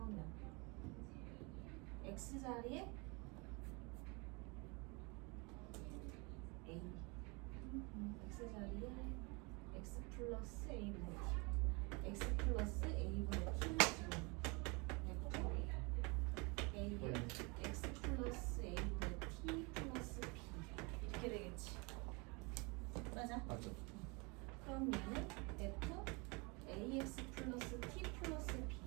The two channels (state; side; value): quieter; left; 29.4 dB